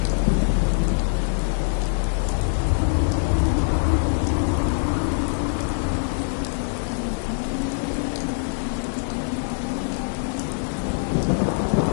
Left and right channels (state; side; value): silent; right; 63 dB below the other